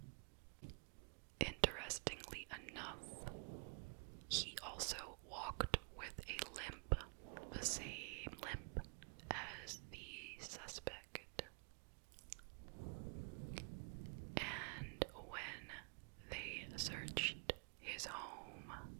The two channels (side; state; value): left; quieter; 39.4 dB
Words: Interestingly enough, he also walked with a limp, the same limp as the suspect. And when they searched his home,